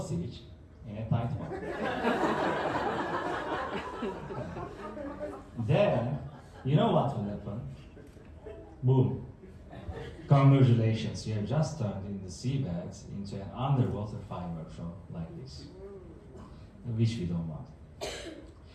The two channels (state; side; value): identical; both; correlation 1.00